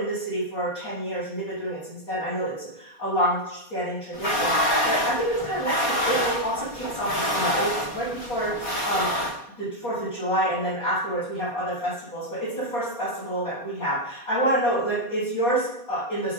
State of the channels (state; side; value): late; right; 4.2 ms